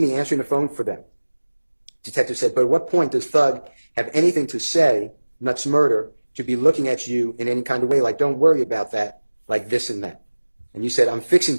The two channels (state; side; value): inverted; both; correlation -1.00